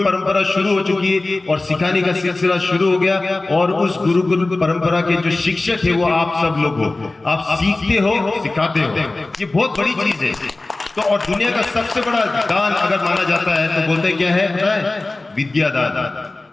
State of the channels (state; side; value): quieter; right; 3.1 dB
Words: परंपरा शुरू हो चुकी है और सिखाने का सिलसिला शुरू हो गया। और उस गुरुकुल परंपरा के जो शिक्षक है वो आप सब लोग हो। आप सीखते हो, सिखाते हो, ये बहुत बड़ी चीज है। तो और दुनिया का सबसे बड़ा दान अगर माना जाता है तो बोलते क्या है? विद्या दान।